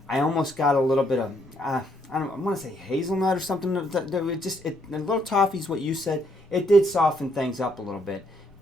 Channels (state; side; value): normal; both; correlation 0.72